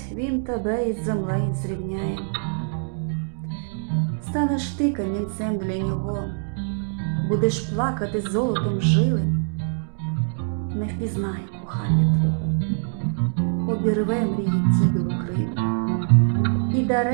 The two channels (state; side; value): silent; left; digital silence